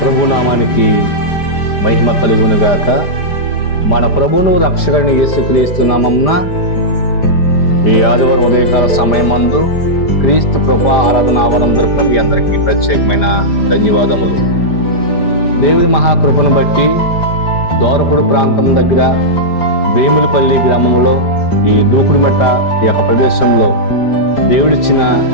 ప్రభునామానికి మహిమ కలుగునుగాక. మన ప్రభువును రక్షకుని యేసుక్రీస్తు నామమున ఈ ఆదివారం ఉదయకాల సమయమందు క్రీస్తు కృపా ఆరాధన ఆవరణ తరపున మీ అందరికీ ప్రత్యేకమైన ధన్యవాదములు. దేవుని మహాకృపను బట్టి దోరపుడు ప్రాంతం దగ్గర వేములపల్లి గ్రామంలో ఈ దూకుడుమెట్ట ఈ యొక్క ప్రదేశంలో దేవుడిచ్చిన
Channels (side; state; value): right; late; 5.0 ms